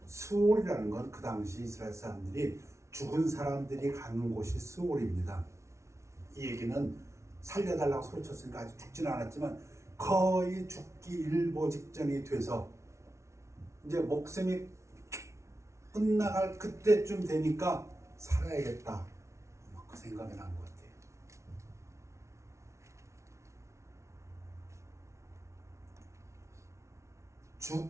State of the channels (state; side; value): late; left; 0.14 ms